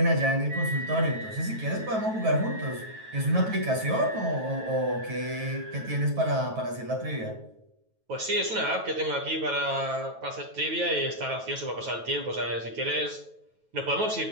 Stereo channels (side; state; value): left; late; 9.2 ms